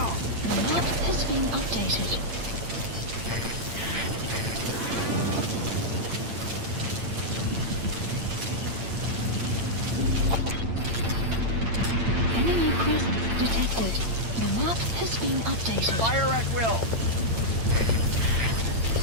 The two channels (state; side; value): late; left; 8.8 ms